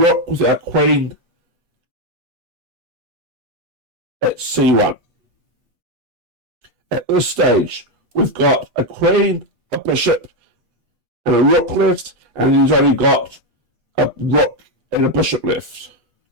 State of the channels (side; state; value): left; late; 8.4 ms